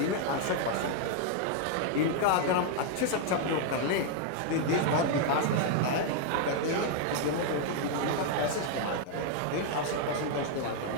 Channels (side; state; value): both; different; correlation 0.00